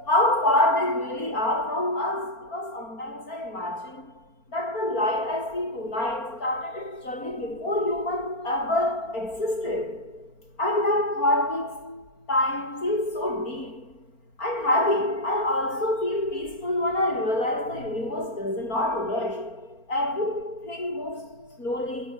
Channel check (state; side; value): late; right; 4.4 ms